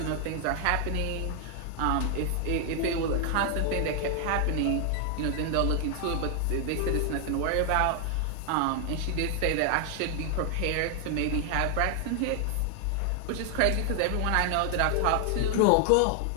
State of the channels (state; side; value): different; both; correlation 0.00